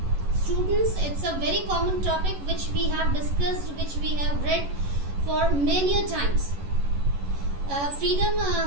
Students, it's a very common topic which we have discussed, which we have read for many times. Freedom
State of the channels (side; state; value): left; late; 11 ms